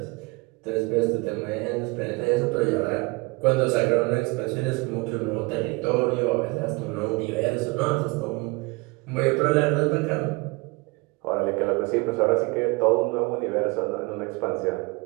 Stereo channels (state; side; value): quieter; left; 26.1 dB